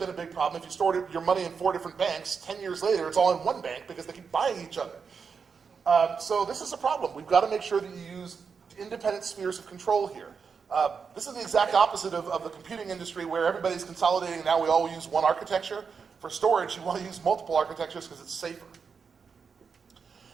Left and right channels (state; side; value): quieter; left; 5.8 dB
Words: a big problem. If you stored your money in 4 different banks, 10 years later, it's all in one bank because they keep buying each other. So this is a problem. We've got to make sure that you use independent spheres of control here. This is the exact opposite of the computing industry where everybody's consolidating. Now we all use one architecture. For storage, you want to use multiple architectures because it's safer.